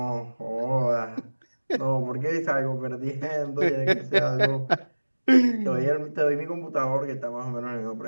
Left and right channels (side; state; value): both; inverted; correlation -1.00